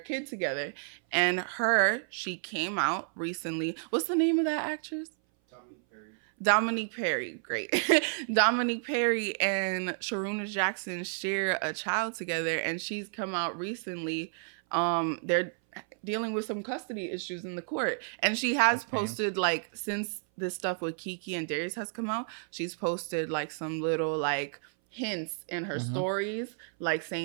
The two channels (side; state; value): left; silent; 57 dB below the other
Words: together. And she came out recently. What's the name of that actress? Dominique Perry. Great. Dominique Perry and Sharuna Jackson share a child together, and she's come out recently. They're dealing with some custody issues in the court, and she has posted like, since this stuff with Keke and Darius has come out, she's posted like some little like hints in her stories, like